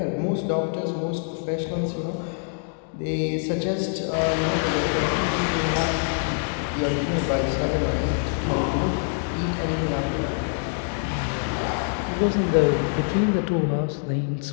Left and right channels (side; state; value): right; silent; 60 dB below the other